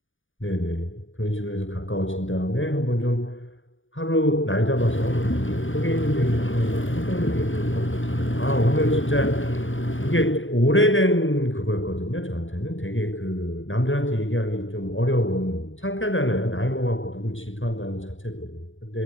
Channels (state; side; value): late; right; 0.57 ms